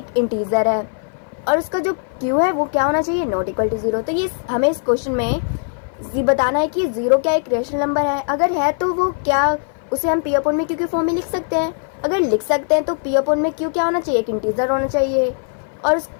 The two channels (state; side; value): silent; right; 57 dB below the other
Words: इंटीजर है, और उसका जो q है वो क्या होना चाहिए? Not equal to 0। तो ये हमें इस क्वेश्चन में बताना है कि जीरो क्या एक रैशनल नंबर है। अगर है तो वो क्या उसे हम p अपॉन में q की फॉर्म में लिख सकते हैं? अगर लिख सकते हैं तो p अपॉन में q क्या होना चाहिए? एक इंटीजर होना चाहिए, और उस